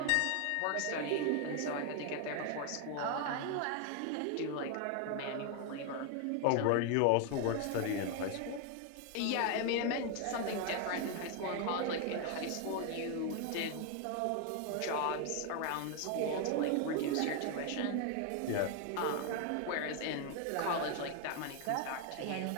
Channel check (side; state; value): both; different; correlation 0.01